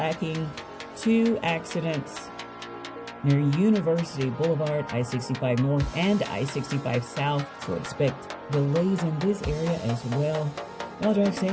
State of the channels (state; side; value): identical; both; correlation 1.00